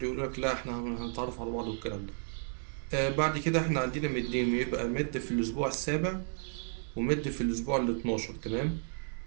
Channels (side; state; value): left; silent; 56 dB below the other